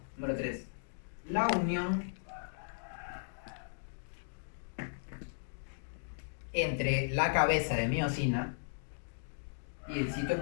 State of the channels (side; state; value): right; silent; digital silence